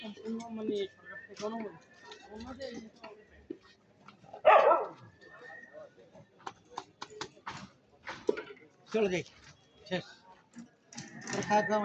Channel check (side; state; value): both; identical; correlation 1.00